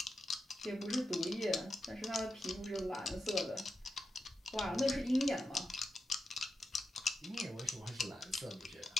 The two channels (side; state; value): both; normal; correlation 0.88